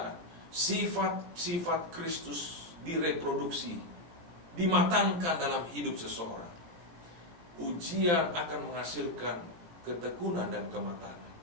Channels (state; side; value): late; left; 18 ms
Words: sifat-sifat Kristus direproduksi, dimatangkan dalam hidup seseorang. Ujian akan menghasilkan ketekunan dan kematangan.